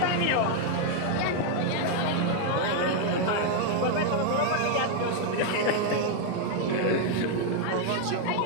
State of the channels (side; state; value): both; different; correlation 0.00